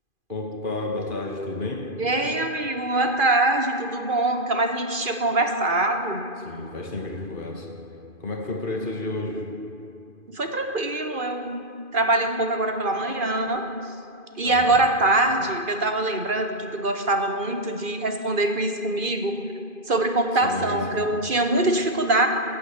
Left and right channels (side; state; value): left; late; 2.5 ms